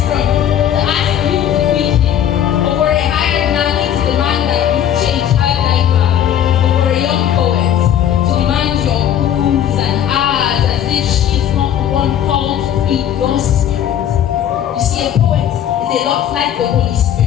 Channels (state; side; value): quieter; right; 10.0 dB